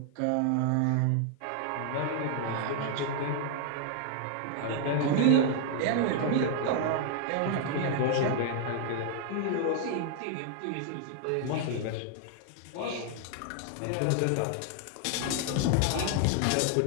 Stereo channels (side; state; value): both; different; correlation 0.00